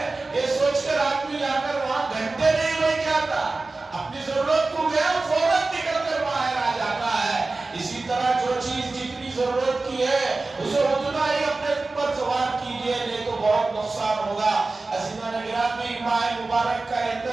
یہ سوچ کر آدمی جا کر وہاں گھنٹے نہیں بیٹھ جاتا، اپنی ضرورت کو گیا فوراً نکل کر باہر آ جاتا ہے. اسی طرح جو چیز جتنی ضرورت کی ہے اسے اتنا ہی اپنے اوپر سوار کیجئے، نہیں تو بہت نقصان ہوگا. عزیزان گرامی، ماہ مبارک کا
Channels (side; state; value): left; quieter; 3.5 dB